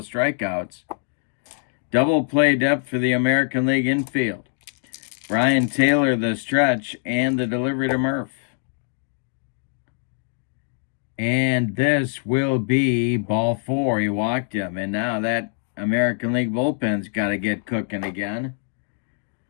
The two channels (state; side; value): silent; right; digital silence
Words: strikeouts. Double play depth for the American League infield. Brian Taylor, the stretch, and the delivery to Murph. And this will be ball 4. He walked him. And now that American League bullpen's got to get cooking again.